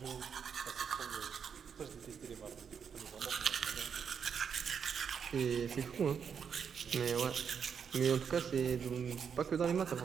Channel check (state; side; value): quieter; left; 7.0 dB